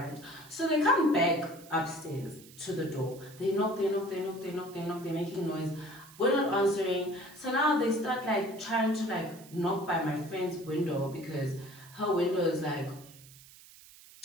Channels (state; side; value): noise; right; hiss, 21 dB below the sound